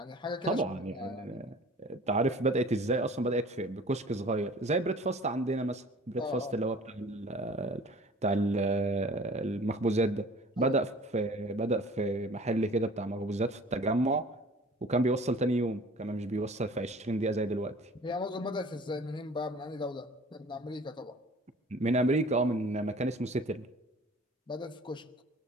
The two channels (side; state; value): both; normal; correlation 0.47